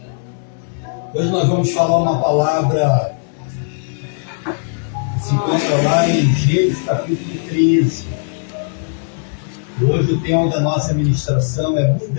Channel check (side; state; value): right; silent; digital silence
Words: Hoje nós vamos falar uma palavra que se encontra lá em Gênesis capítulo 13. Hoje o tema da nossa ministração é